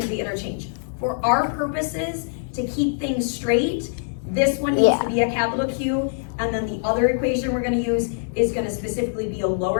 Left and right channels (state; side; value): silent; right; 63 dB below the other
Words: be interchanged. For our purposes, to keep things straight, this one needs Yeah. to be a capital Q, and then the other equation we're gonna use is gonna specifically be a